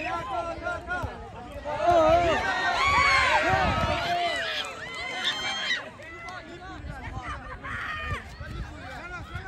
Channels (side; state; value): both; identical; correlation 1.00